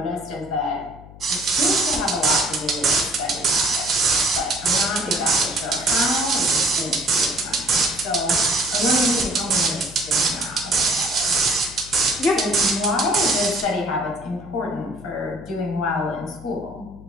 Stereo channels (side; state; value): left; noise; hum, 18 dB below the sound